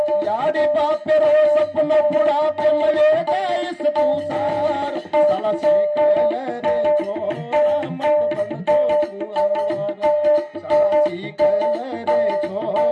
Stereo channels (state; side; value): identical; both; correlation 1.00